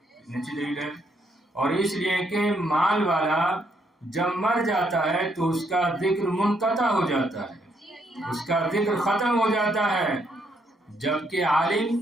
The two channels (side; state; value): both; normal; correlation 0.73